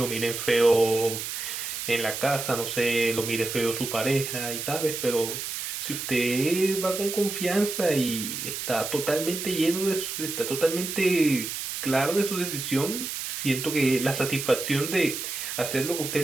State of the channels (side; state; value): right; noise; hiss, 5 dB below the sound